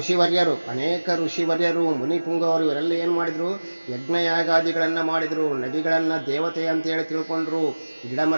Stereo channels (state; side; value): inverted; both; correlation -1.00